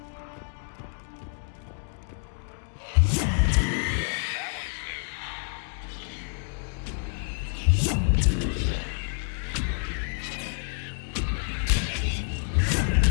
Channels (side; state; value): right; silent; digital silence